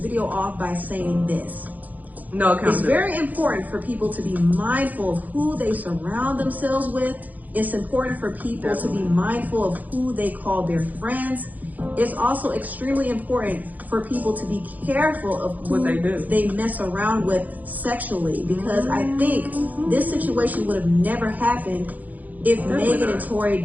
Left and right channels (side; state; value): left; late; 0.080 ms